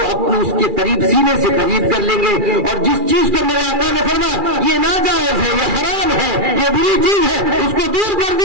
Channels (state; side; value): late; left; 2.4 ms